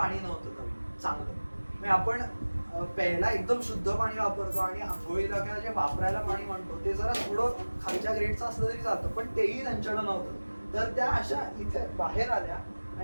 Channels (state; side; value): inverted; both; correlation -1.00